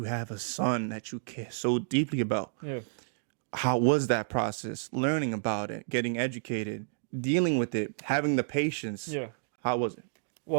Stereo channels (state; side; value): silent; left; digital silence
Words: have a son that you care so deeply about, Yeah. how was that process? Learning about it, getting educated, dealing with it, having the patience. Yeah. How was it?